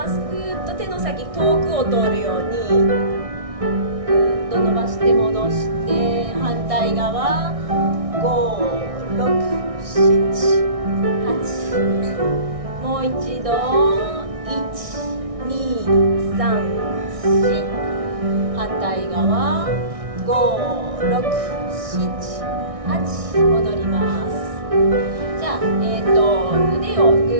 す。ぐーっと手の先遠くを通るようにぐーっと伸ばして戻して、反対側56788。もう一度12345、反対側56788。戻ります。じゃあ、腕をぐ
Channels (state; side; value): late; left; 1.6 ms